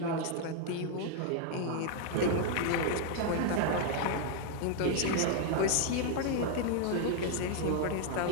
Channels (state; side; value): different; both; correlation 0.00